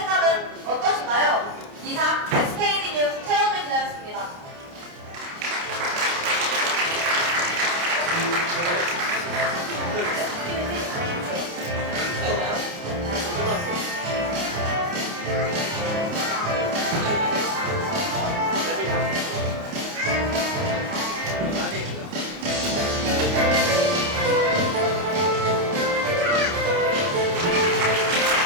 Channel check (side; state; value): left; late; 29 ms